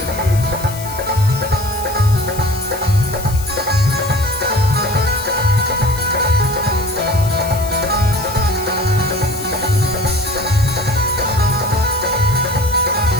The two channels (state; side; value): noise; left; hiss, 13 dB below the sound